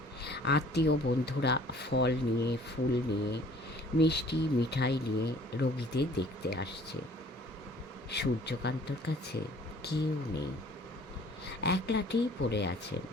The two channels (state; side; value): normal; both; correlation 0.53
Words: আত্মীয় বন্ধুরা ফল নিয়ে, ফুল নিয়ে, মিষ্টি মিঠাই নিয়ে রোগীদের দেখতে আসছে। সূর্যকান্তর কাছে কেউ নেই, একলাটেই পড়ে আছেন।